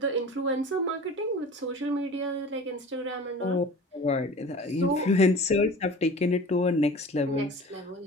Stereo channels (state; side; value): normal; both; correlation 0.40